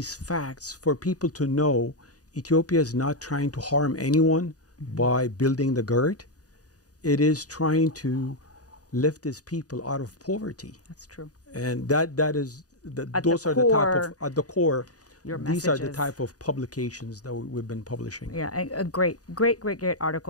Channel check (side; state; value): right; late; 0.67 ms